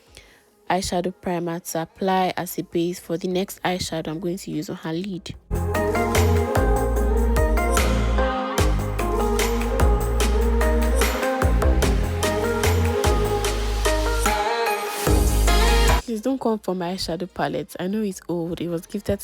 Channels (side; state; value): both; identical; correlation 1.00